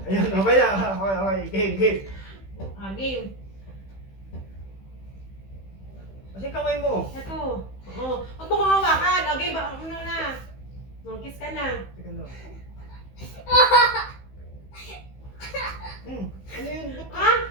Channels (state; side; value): late; right; 15 ms